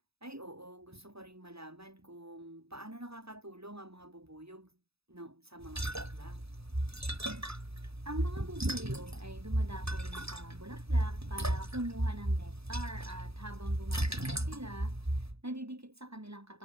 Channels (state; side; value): late; left; 0.78 ms